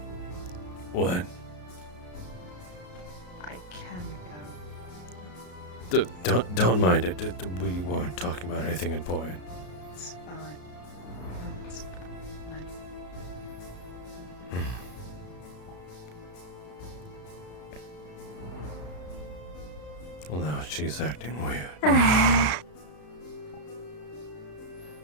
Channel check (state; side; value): late; right; 33 ms